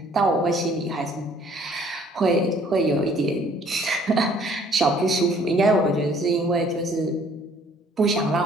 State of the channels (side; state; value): both; normal; correlation 0.59